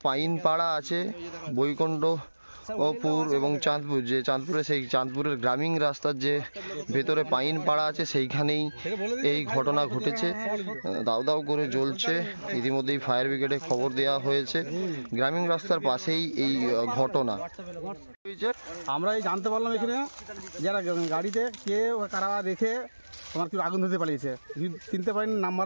পাইনপাড়া আছে, বৈকুণ্ঠপুর এবং চাঁদপুর, যে চাঁদপুরে সেই চাঁদপুরের গ্রামীণ রাস্তার যে ভেতরে পাইনপাড়া আছে সেইখানেই এই ঘটনা ঘটেছে। দাউ দাউ করে জ্বলছে। ইতিমধ্যেই ফায়ার ব্রিগেডে খবর দেওয়া হয়েছে। গ্রামীণ রাস্তার পাশেই এই ঘটনা। আমরা এই জানতে পারলাম এখানে যারা গাড়িতে কে কারা দেখে তোমার কি আগুন ধরতে পারিয়েছে, চিনতে পারিনি,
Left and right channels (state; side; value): inverted; both; correlation -1.00